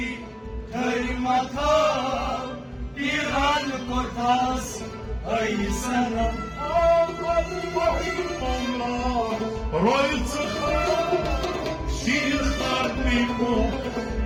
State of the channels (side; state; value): both; identical; correlation 1.00